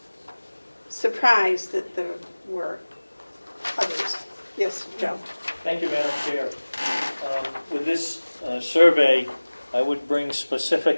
surprised that there were others. Yes, Joe? Thank you, Madam Chair. With this survey, I would bring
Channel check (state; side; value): inverted; both; correlation -1.00